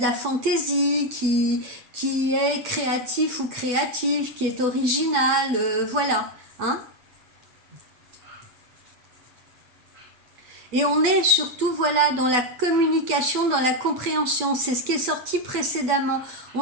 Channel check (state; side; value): late; left; 8.1 ms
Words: la fantaisie, qui est créatif ou créative, qui est original, voilà, hein. Et on est surtout, voilà, dans la communication, dans la compréhension. C'est ce qui est sorti précédemment.